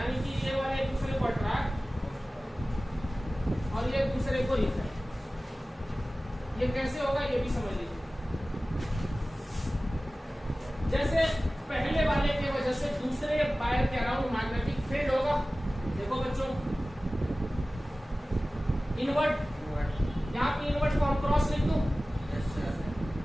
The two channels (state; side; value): normal; both; correlation 0.97